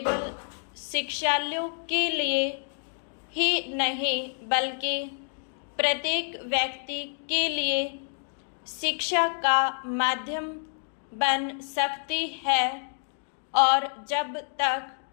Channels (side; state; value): right; silent; 59 dB below the other